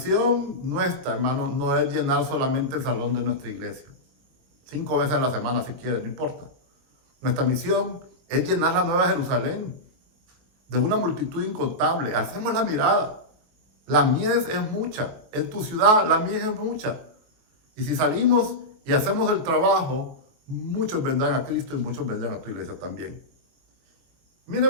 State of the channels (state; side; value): late; left; 23 ms